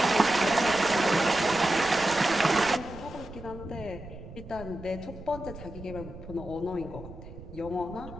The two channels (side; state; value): right; noise; rumble, 14 dB below the sound